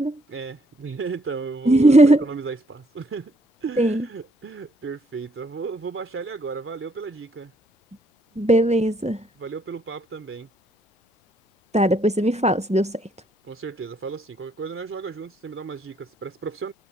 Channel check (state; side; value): normal; both; correlation 0.69